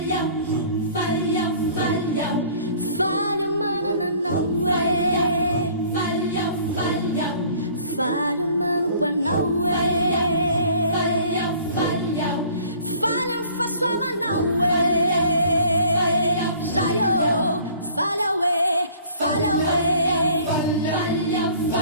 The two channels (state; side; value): inverted; both; correlation -0.52